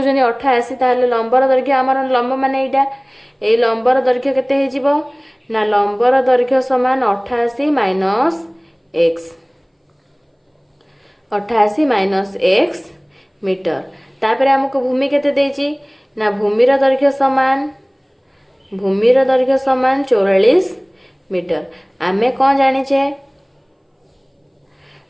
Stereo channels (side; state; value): both; identical; correlation 1.00